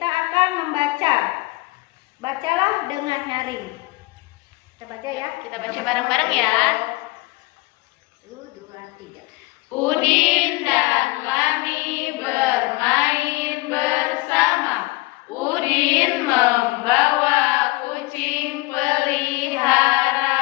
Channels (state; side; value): quieter; right; 22.5 dB